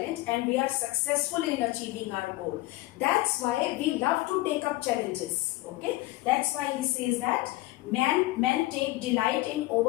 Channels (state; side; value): quieter; right; 19.3 dB